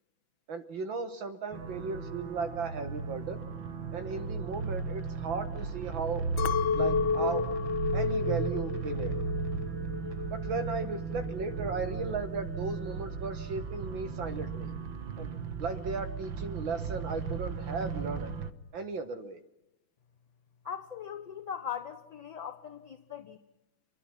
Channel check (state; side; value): late; left; 6.0 ms